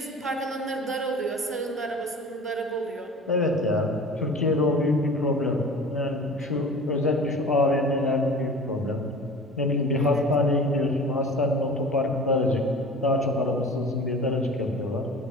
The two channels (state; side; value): normal; both; correlation 0.40